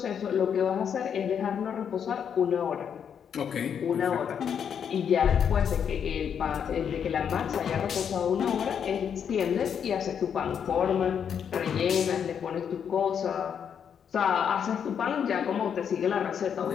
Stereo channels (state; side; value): quieter; right; 7.8 dB